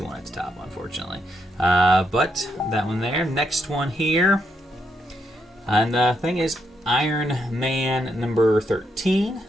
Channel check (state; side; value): normal; both; correlation 0.79